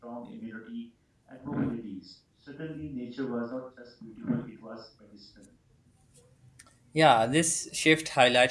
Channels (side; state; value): both; identical; correlation 1.00